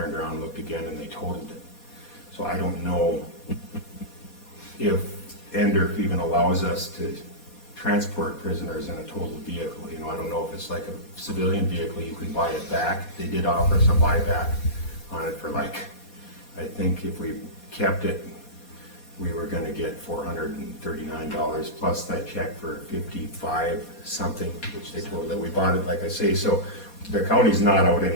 around, looked again, and they totaled it. So I don't know if Endorf even allows us to transport prisoners in a totaled vehicle. You know, I don't know if it's like a civilian vehicle, you can buy it back. They did offer us a buyback on it for like, I think if we kept it, we were gonna get $439 plus that check for 55 something, which they told that we bought it, like I say, so the county's not out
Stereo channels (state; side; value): late; right; 4.2 ms